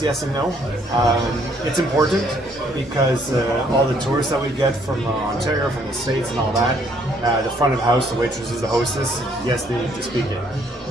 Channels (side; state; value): both; normal; correlation 0.66